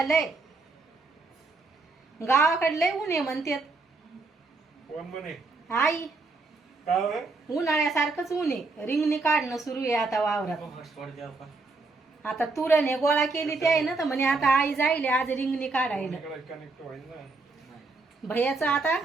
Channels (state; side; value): quieter; left; 3.7 dB